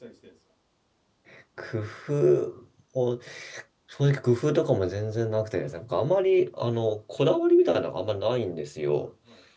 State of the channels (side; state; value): both; identical; correlation 1.00